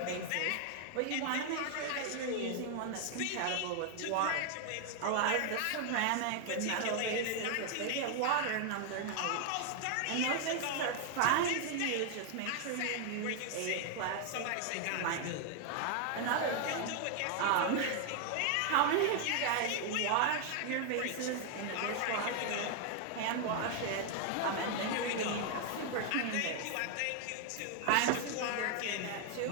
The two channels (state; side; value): different; both; correlation 0.00